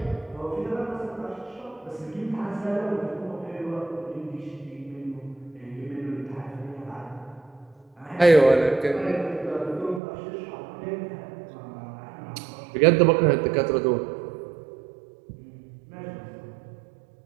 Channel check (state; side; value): drops out; left; at 10.0 s